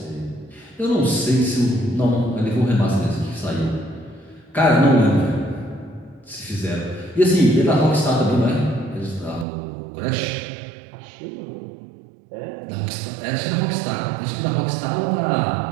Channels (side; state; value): left; drops out; at 9.5 s